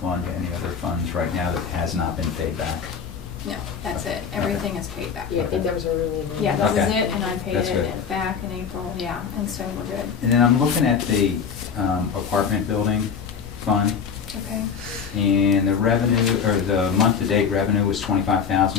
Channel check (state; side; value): quieter; right; 6.6 dB